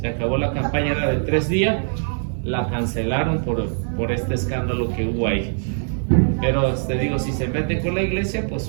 Era de 3 días, la cancelaron por este escándalo que hubo ahí. Pero te digo, si se meten con la iglesia, pues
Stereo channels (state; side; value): silent; left; 64 dB below the other